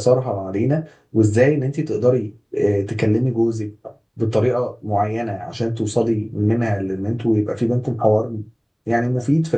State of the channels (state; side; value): identical; both; correlation 1.00